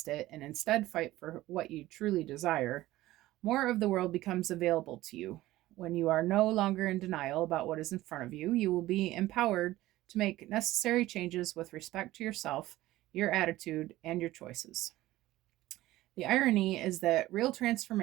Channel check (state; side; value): quieter; left; 16.5 dB